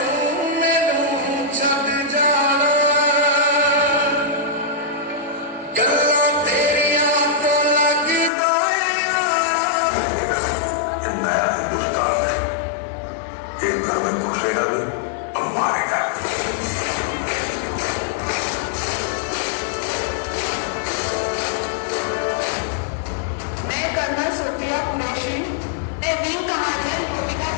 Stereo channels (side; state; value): right; drops out; at 8.3 s